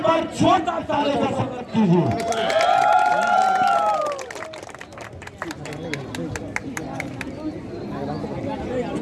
बार छोटा ताली का स्वागत कीजिए।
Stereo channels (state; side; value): identical; both; correlation 1.00